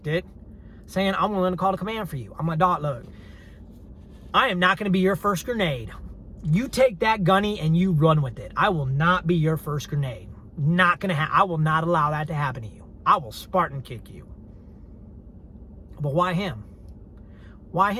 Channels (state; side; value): identical; both; correlation 1.00